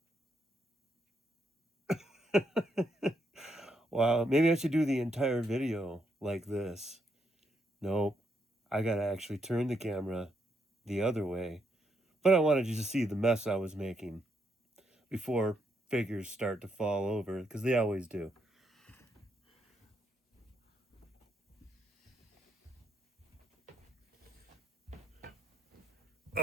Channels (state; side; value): normal; both; correlation 0.78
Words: Wow, maybe I should do the entire video like this. Nope. I gotta actually turn the camera the other way. But I wanted you to see the mess I was making before figures start to fall over, because they always do.